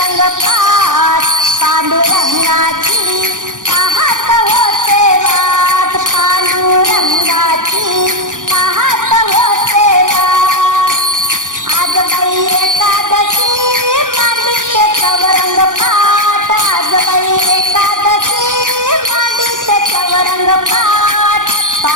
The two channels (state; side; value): late; left; 0.88 ms